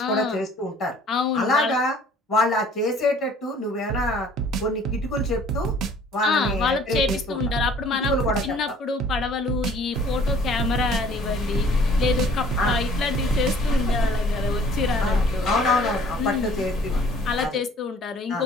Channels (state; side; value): normal; both; correlation 0.54